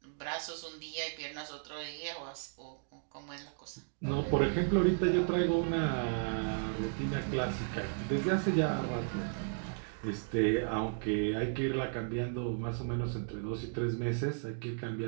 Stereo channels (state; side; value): silent; left; digital silence